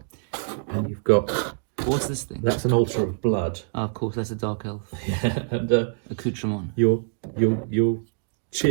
And you've got, What's this thing? that's an altar of blood. Of course, that's a dark elf And accoutrement. your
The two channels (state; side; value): silent; left; digital silence